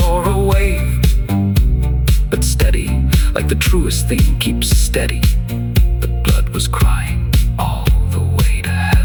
or a wave, but steady, like the truest thing keeps steady. The blood was crying all the way to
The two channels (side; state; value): both; identical; correlation 1.00